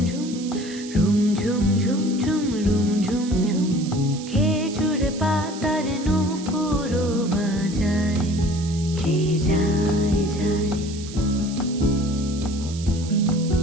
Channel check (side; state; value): right; noise; hiss, 15 dB below the sound